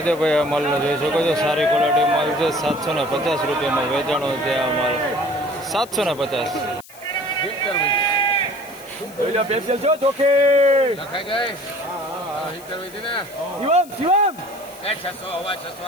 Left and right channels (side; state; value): left; noise; hiss, 21 dB below the sound